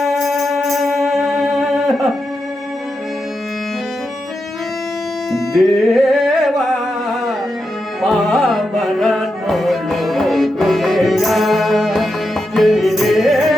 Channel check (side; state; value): both; normal; correlation 0.87